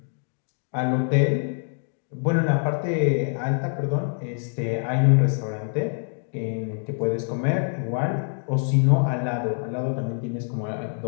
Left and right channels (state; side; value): silent; right; 62 dB below the other